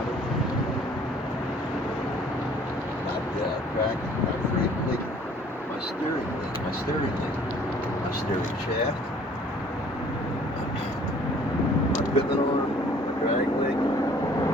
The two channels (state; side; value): normal; both; correlation 0.55